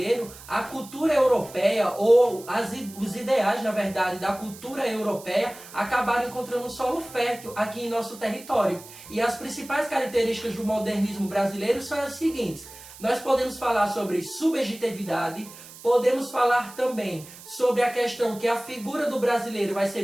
a cultura europeia, ou os ideais, na verdade, da cultura europeia, acabaram encontrando um solo fértil aqui em nosso território. E as principais características do modernismo brasileiro são as seguintes. Nós podemos falar sobre subjetividade, podemos falar também sobre a questão que a figura do brasileiro vai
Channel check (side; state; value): right; noise; hiss, 18 dB below the sound